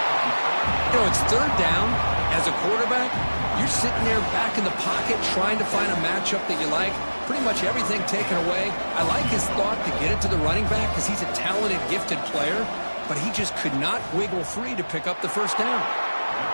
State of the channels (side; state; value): both; inverted; correlation -1.00